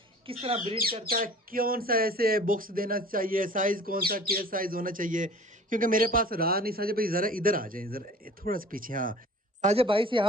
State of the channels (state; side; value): normal; both; correlation 0.45